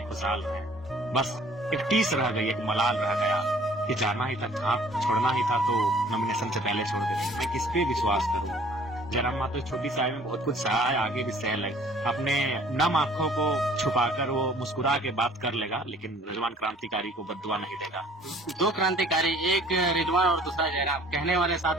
खुशहाल रहे। बस एक टीस रह गई, एक मलाल रह गया कि जाना ही था, छोड़ना ही था तो नॉमिनेशन से पहले छोड़ देते। मैं किस पे विश्वास करूं? जयराम महतो छोटी सी आयु में बहुत कुछ सहा है, आगे भी सह ले। अपने नम आंखों को छुपाकर वो मुस्कुरा के बात कर लेगा, लेकिन रिजवान क्रांतिकारी को बद्दुआ नहीं देगा। दो क्रांतिकारी, एक रिजवान और दूसरा जयराम, कहने वाले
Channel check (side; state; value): both; normal; correlation 0.55